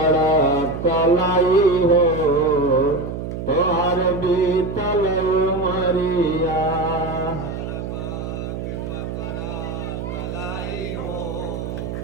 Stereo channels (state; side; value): noise; right; hum, 6 dB below the sound